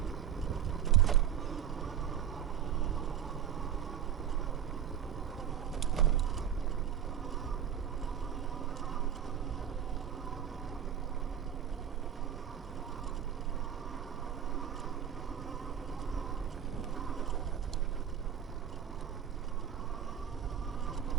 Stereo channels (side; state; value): left; quieter; 9.3 dB